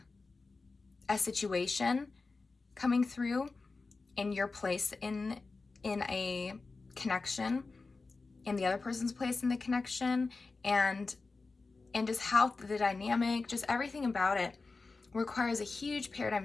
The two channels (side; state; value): right; quieter; 3.9 dB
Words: a situation coming through in your place in a connection, in the other person's place in the connection, and just how the dynamic, just everything about it requires a huge paradigm